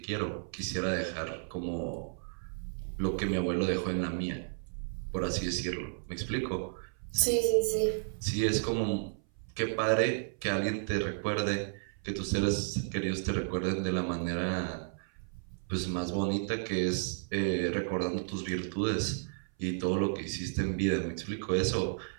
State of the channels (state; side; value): silent; left; 56 dB below the other